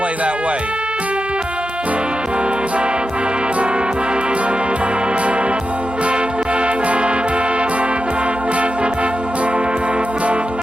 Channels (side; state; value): both; normal; correlation 0.90